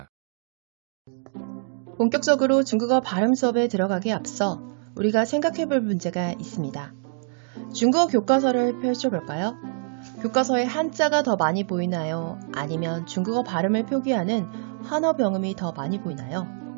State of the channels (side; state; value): left; silent; digital silence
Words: 본격적으로 중국어 발음 수업에 들어가기에 앞서 우리가 생각해볼 문제가 있습니다. 중국어 교과서를 펼쳐볼까요? 교과서에 한자가 더 많이 보이나요? 아니면 중국어 발음을 표기하는 한어병음이 더 많이 보이나요?